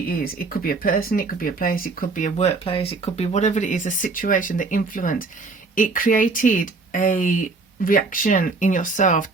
is, it could be a person, it could be a place, it could be a workplace, it could be whatever it is, a situation, the influence. It created a reaction in yourself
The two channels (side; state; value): left; quieter; 3.9 dB